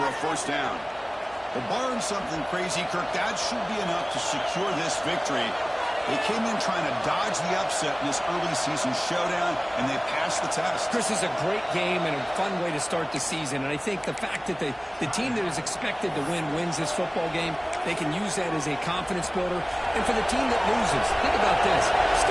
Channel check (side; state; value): both; identical; correlation 1.00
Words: a 1st down. But barring something crazy, Kirk, that should be enough to secure this victory. They came in trying to dodge the upset in this early season showdown, and they passed the test. Chris, is a great game and a fun way to start the season. And I think the fact that the team that is expected to win wins this football game, they can use that as a confidence builder. And for the team that loses, think about this.